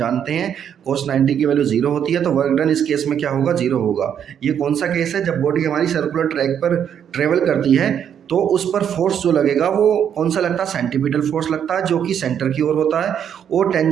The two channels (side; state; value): left; quieter; 8.7 dB